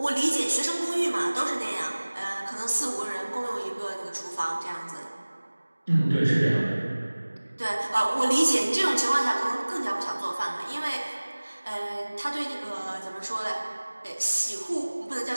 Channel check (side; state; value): both; inverted; correlation -1.00